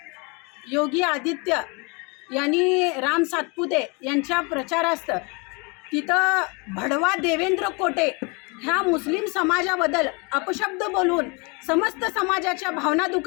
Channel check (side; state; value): right; quieter; 30.5 dB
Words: योगी आदित्य यांनी राम सातपुते यांच्या प्रचारार्थ तिथं भडवा देवेंद्र कोटे ह्या मुस्लिम समाजाबद्दल अपशब्द बोलून समस्त समाजाच्या भावना